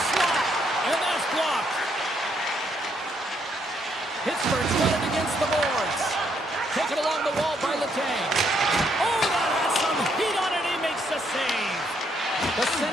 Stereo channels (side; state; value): both; normal; correlation 0.73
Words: slot, and that's blocked. Pittsburgh's got it against the boards. Taken along the wall by LeCang. Oh, that has some heat on it. He makes the save. The